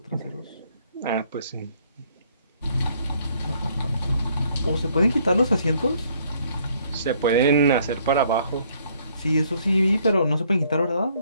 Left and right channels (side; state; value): both; inverted; correlation -0.65